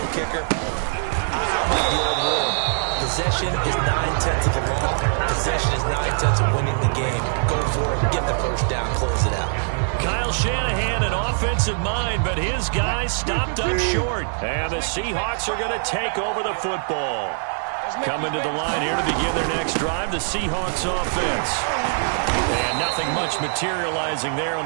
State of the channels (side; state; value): left; silent; digital silence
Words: kicker. I'm like the old rule. Possession is 9/10 of the law. Possession is 9/10 of winning the game. Go for it, get the first down, close it out. Kyle Shanahan, an offensive mind, but his guys stopped up short. And the Seahawks are going to take over the football. Coming to the line here to begin their next drive, the Seahawks offense. And nothing much materializing there on